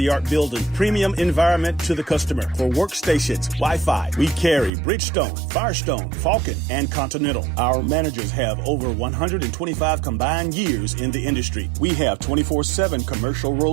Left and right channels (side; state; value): left; drops out; at 4.7 s